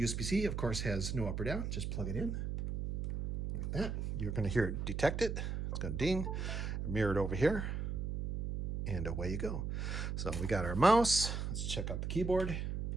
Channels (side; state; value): right; noise; hum, 2 dB below the sound